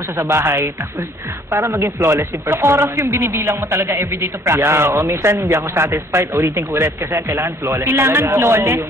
siya sa bahay. Tapos, para maging flawless yung performance. So, oras yung binibilang mo talaga everyday to practice? Yeah, o minsan hindi ako satisfied. Ulitin ko ulit kasi kailangan flawless. Kailangan talaga. flawless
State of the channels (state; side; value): normal; both; correlation 0.59